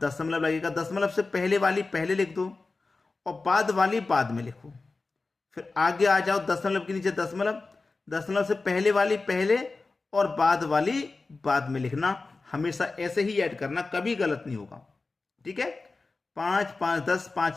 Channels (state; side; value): quieter; right; 3.7 dB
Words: लगेगा, दशमलव से पहले वाली पहले लिख दो और बाद वाली बाद में लिखो। फिर आगे आ जाओ, दशमलव के नीचे दशमलव, दशमलव से पहले वाली पहले और बाद वाली बाद में लिखना। हमेशा ऐसे ही ऐड करना, कभी गलत नहीं होगा, ठीक है। 5 5 10